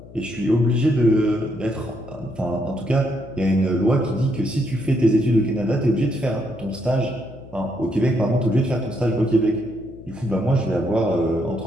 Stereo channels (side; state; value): left; noise; hum, 19 dB below the sound